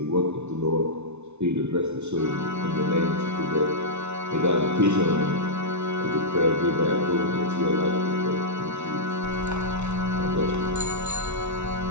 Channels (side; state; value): left; late; 0.81 ms